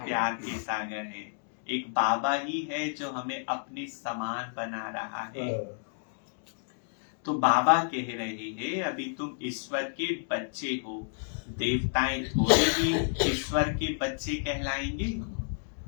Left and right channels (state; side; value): silent; right; digital silence